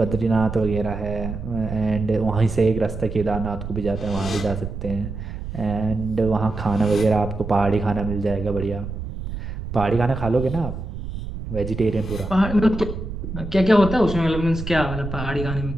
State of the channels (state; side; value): noise; right; rumble, 8 dB below the sound